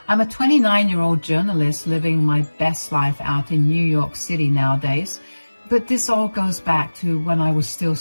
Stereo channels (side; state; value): both; inverted; correlation -1.00